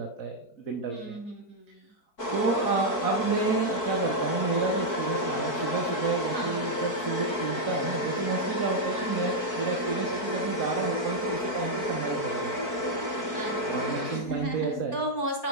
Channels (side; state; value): right; late; 4.5 ms